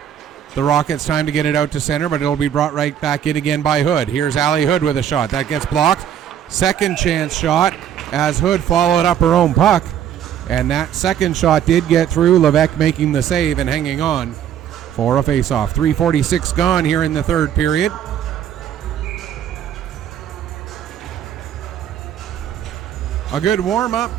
the Rockets time to get it out to center, but it'll be brought right back in again by Hood. Here's Allie Hood with a shot. That gets blocked. Second chance shot as Hood followed up her own puck, and that second shot did get through. Levesque making the save and hanging on for a faceoff. 3:46 gone here in the third period. A good warm-up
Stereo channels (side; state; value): left; quieter; 9.9 dB